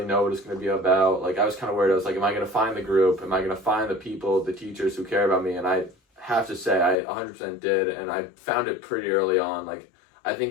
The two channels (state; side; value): drops out; right; at 7.0 s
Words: know what it's going to be about. Like I was kind of worried. I was like, am I going to find the group? Am I going to find the people, the teachers who care about me? And I have to say, I 100% did, and I found it pretty early on. Like I